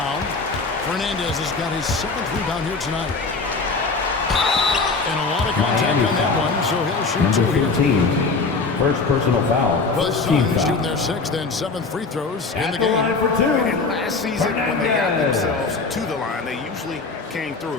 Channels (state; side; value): quieter; right; 4.1 dB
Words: Fernandez has got his 7th rebound here tonight. And a lot of contact on that one, so he'll shoot 2 here. 15. First personal foul. The Suns shooting their 6th and 7th free throws in the game. And last season, when they got themselves to the line, they usually came